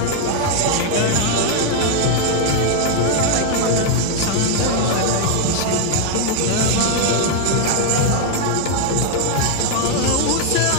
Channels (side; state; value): both; different; correlation 0.01